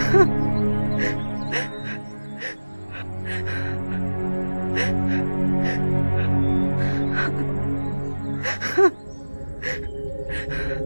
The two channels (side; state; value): both; inverted; correlation -1.00